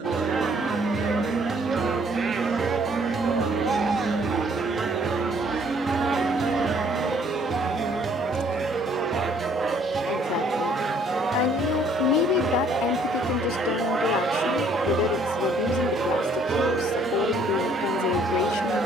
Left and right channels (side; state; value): both; normal; correlation 0.62